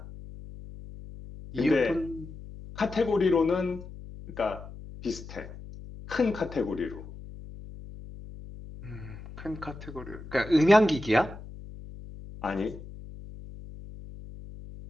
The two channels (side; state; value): left; noise; hum, 14 dB below the sound